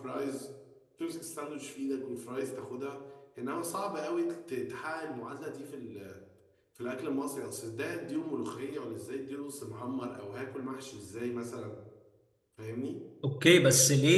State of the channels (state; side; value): identical; both; correlation 1.00